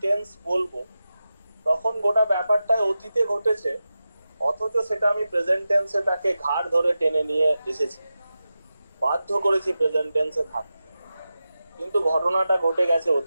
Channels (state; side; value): inverted; both; correlation -0.92